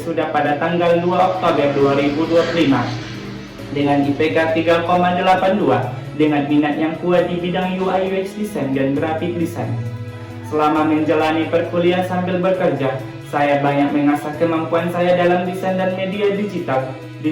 pada tanggal 2 Oktober 2025 dengan IPK 3,82 dengan minat yang kuat di bidang UI UX Design dan Graphic Design. Selama menjalani perkuliahan sambil bekerja, saya banyak mengasah kemampuan saya dalam desain dan media digital.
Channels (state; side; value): identical; both; correlation 1.00